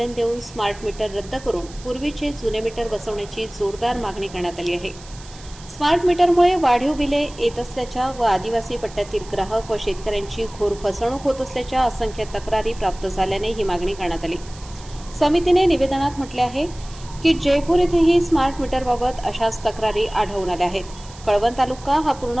देऊन स्मार्ट मीटर रद्द करून पूर्वीचे जुने मीटर बसवण्याची जोरदार मागणी करण्यात आली आहे. स्मार्ट मीटरमुळे वाढीव बिले येत असल्याच्या व आदिवासी पट्ट्यातील ग्राहक व शेतकऱ्यांची घोर फसवणूक होत असल्याच्या असंख्य तक्रारी प्राप्त झाल्याने ही मागणी करण्यात आली. समितीने निवेदनात म्हटले आहे की जयपूर येथेही स्मार्ट मीटरबाबत अशाच तक्रारी आढळून आल्या आहेत. कळवण तालुका हा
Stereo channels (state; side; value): noise; right; hiss, 20 dB below the sound